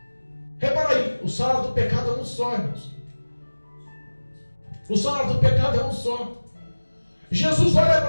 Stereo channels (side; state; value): both; inverted; correlation -1.00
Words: Repara aí, o salário do pecado é um só, irmãos. O salário do pecado é um só. Jesus olha